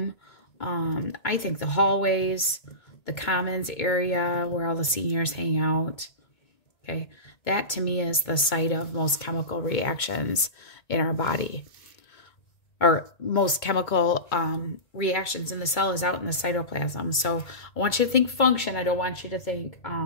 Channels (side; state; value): right; late; 2.2 ms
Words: I think the hallways, the commons area where all the seniors hang out. Okay, that to me is the site of most chemical reactions in our body. Or most chemical reactions in the cell is out in the cytoplasm. So I want you to think function. I don't want you to think